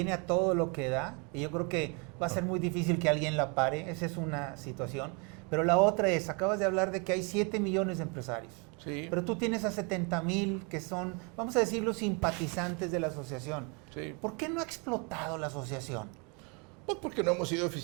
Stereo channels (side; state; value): left; quieter; 33.0 dB